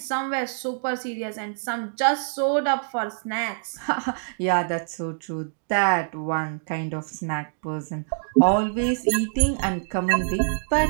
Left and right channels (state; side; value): silent; left; digital silence